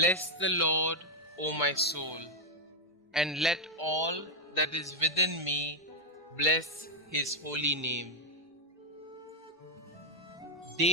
the Lord, O my soul, and let all that is within me bless his holy name.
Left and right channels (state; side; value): normal; both; correlation 0.01